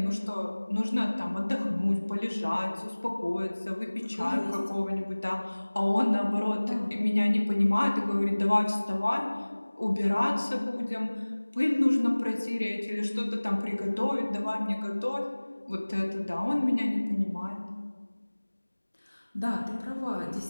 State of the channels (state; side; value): inverted; both; correlation -1.00